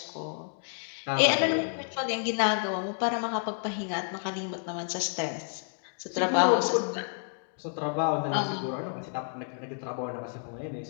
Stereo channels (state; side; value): silent; right; digital silence